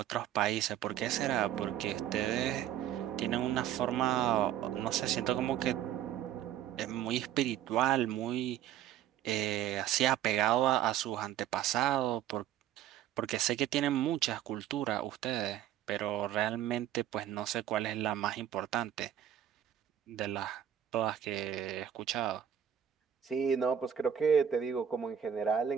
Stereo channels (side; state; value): left; quieter; 10.4 dB